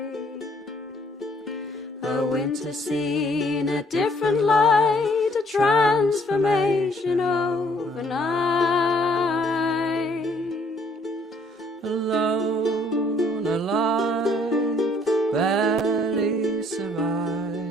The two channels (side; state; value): both; normal; correlation 0.63